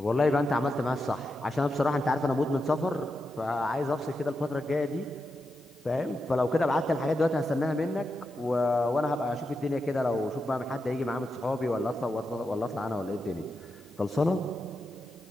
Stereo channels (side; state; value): left; noise; hiss, 29 dB below the sound